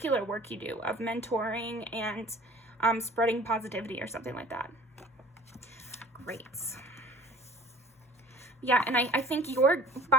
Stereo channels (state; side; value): normal; both; correlation 0.47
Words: work you do of mentoring and spreading positivity or something like that. Great. Yeah, and I think you're,